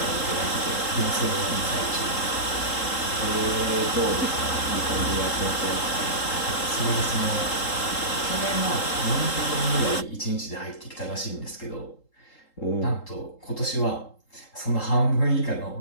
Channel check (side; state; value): right; late; 3.8 ms